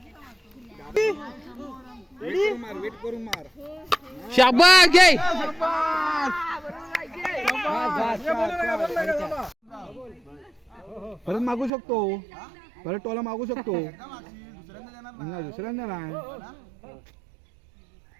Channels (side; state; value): left; drops out; at 11.7 s